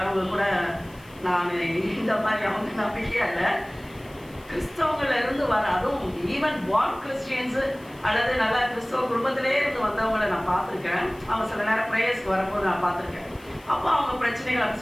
கூட, நான் இந்த மாதிரி அவங்க நம்பிக்கையா இல்லை, கிறிஸ்தவங்கள்ல இருந்து வர, அதுவும் ஈவன் பார்ன் கிறிஸ்டியன்ஸு அல்லது நல்லா கிறிஸ்தவ குடும்பத்திலே இருந்து வந்தவங்களை நான் பார்த்துருக்கேன். அவங்க சில நேரம் ப்ரேயர்ஸ்க்கு வரும்போது நான் பார்த்துருக்கேன். அப்போ அவங்க பிரச்சனைகள்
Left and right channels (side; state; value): left; noise; hiss, 26 dB below the sound